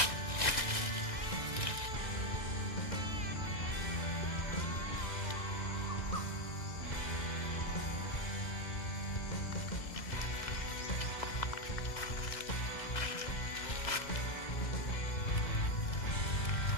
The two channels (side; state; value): right; late; 2.3 ms